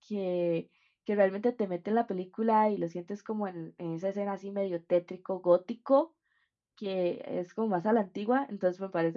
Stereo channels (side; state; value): both; identical; correlation 1.00